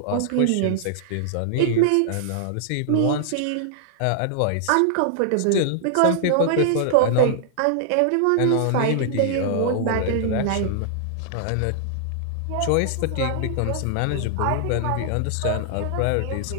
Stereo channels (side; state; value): both; different; correlation -0.01